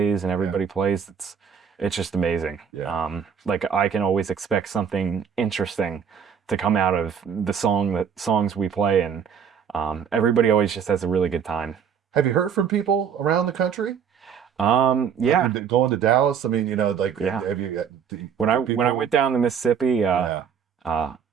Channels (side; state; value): left; quieter; 7.4 dB